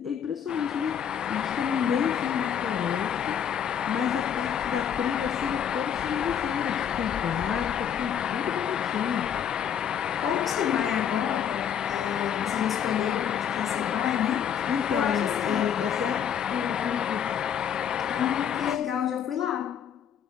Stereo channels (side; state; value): right; quieter; 8.6 dB